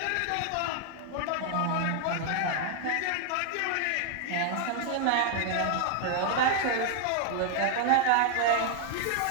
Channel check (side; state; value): both; different; correlation 0.00